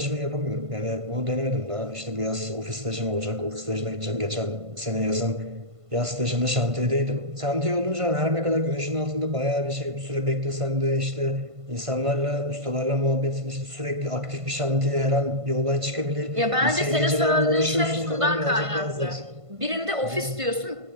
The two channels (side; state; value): left; late; 1.5 ms